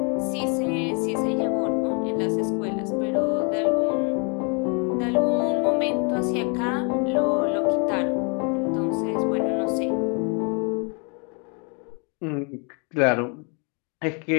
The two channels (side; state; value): right; quieter; 35.7 dB